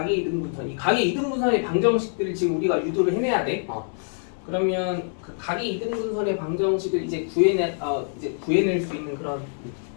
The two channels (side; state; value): right; silent; 62 dB below the other